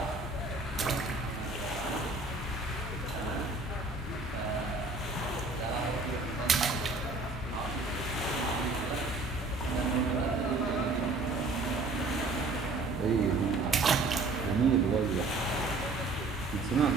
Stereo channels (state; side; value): quieter; left; 3.3 dB